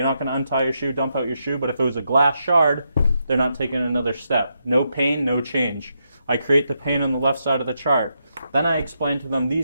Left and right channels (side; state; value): both; inverted; correlation -0.82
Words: not going to untie your shoe, dump out your shoe. But if it was a glass shard, they're not taking another step. No pain, no change. I create the pain on the left side of the chart. Then I explain to them